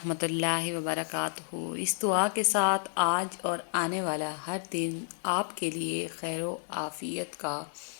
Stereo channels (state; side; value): silent; right; 57 dB below the other